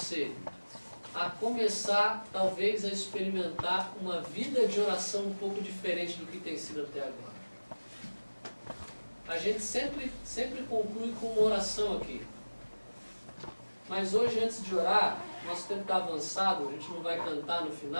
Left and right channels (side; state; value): both; inverted; correlation -1.00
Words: a começar, talvez, a experimentar uma vida de oração um pouco diferente do que tem sido até agora. A gente sempre conclui com uma oração aqui. Mas hoje, antes de orar, nosso tempo está avançado, a gente não vai cantar no